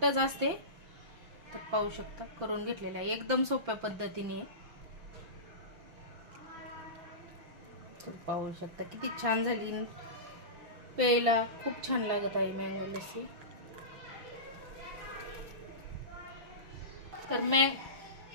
असते, तर पाहू शकता करून घेतलेलं आहे, एकदम सोप्या पद्धतीने। तर पाहू शकता किती छान झाली, प्यायला खूप छान लागत आहे मँगो लस्सी। तर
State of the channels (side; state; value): left; late; 5.9 ms